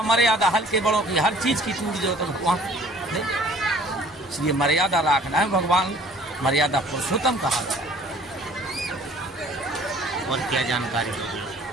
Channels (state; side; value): normal; both; correlation 0.52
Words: मर्यादा हल्के बड़ों की हर चीज की टूट जाए तो भगवान नहीं। इसलिए मर्यादा रखना है, भगवान मर्यादा पुरुषोत्तम कहा जाए। और क्या जानकारी होगी?